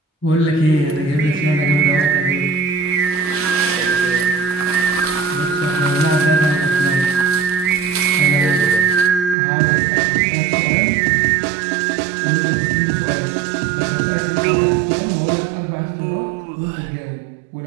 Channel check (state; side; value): drops out; left; at 9.3 s